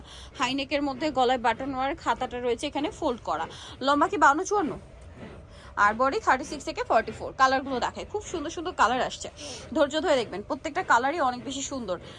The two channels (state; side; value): identical; both; correlation 1.00